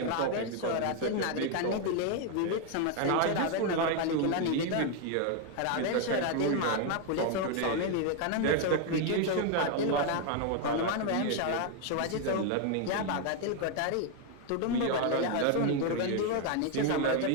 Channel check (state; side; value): different; both; correlation 0.01